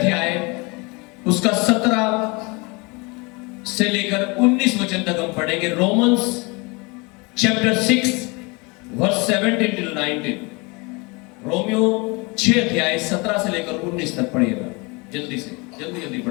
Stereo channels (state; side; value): quieter; right; 27.8 dB